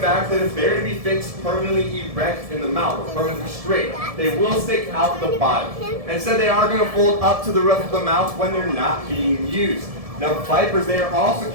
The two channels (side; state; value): left; late; 1.7 ms